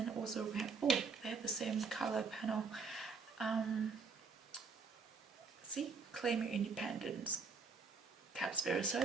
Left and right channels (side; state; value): left; quieter; 5.0 dB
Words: also we have, oh, they have the same color panel. See, claim your independence, Cat Spirit. So I